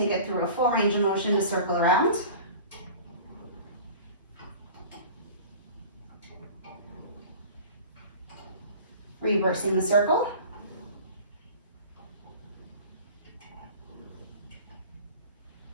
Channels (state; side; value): inverted; both; correlation -0.40